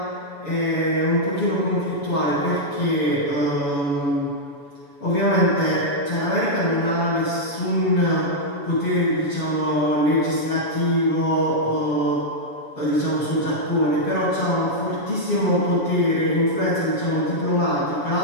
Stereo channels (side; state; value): right; late; 7.1 ms